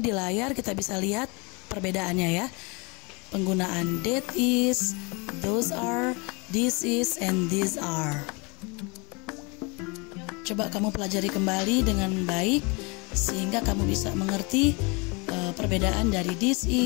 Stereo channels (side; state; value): right; quieter; 29.2 dB